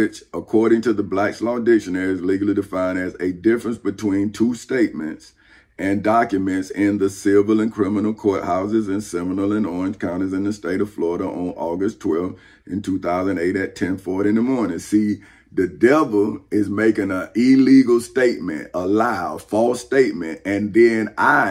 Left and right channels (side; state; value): both; identical; correlation 1.00